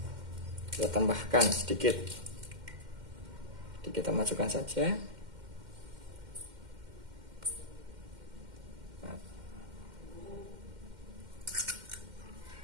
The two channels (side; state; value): left; late; 2.1 ms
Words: Kita tambahkan sedikit. Jadi kita masukkan saja.